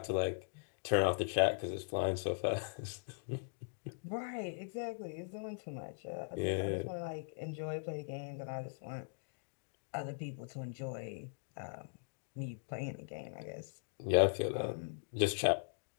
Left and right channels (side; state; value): right; silent; digital silence